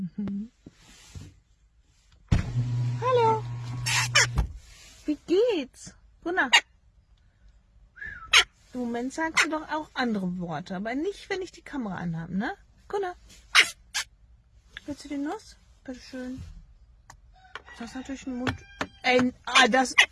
Hallo. Wie geht's? Gunnar. Im Moment sagst du doch auch andere Worte, aber nicht, wenn ich die Kamera anhabe, ne? Gunnar. Willst du die Nuss? Bitteschön. Das ist natürlich ein Mund. Ey,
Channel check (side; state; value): both; identical; correlation 1.00